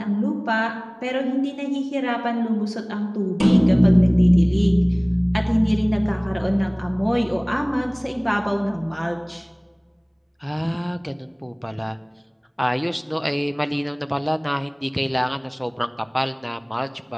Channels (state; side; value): identical; both; correlation 1.00